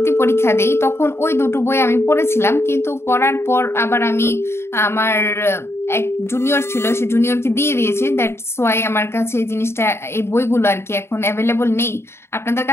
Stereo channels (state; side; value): late; right; 0.12 ms